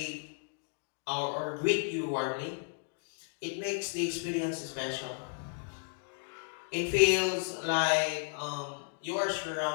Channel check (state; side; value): silent; right; 55 dB below the other